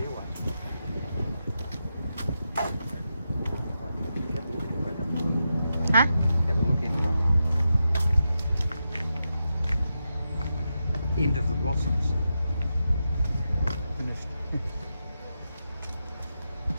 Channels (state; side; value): inverted; both; correlation -0.88